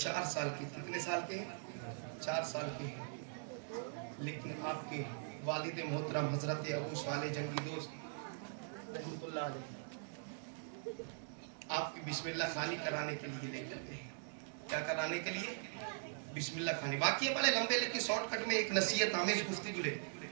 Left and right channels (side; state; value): left; silent; digital silence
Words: साल के, कितने साल के हैं? 4 साल के हैं। लेकिन आपके वालिद मोहतरम हजरत अबू साले जंगी दोस्त रहमतुल्लाह अलैह आपकी बिस्मिल्लाह खानी कराने के लिए लेकर गए। क्या कराने के लिए? बिस्मिल्लाह खानी। वाकया बड़े लंबे, लेकिन शॉर्टकट में एक नसीहत आमेज गुफ्तगू ले।